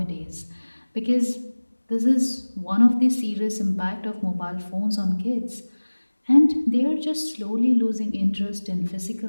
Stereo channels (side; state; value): both; inverted; correlation -1.00